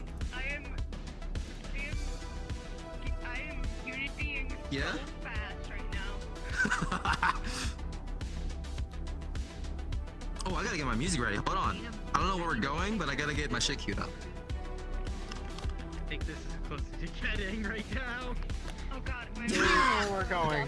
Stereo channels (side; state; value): both; identical; correlation 1.00